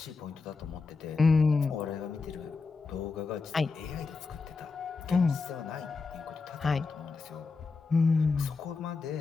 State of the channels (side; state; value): right; quieter; 4.4 dB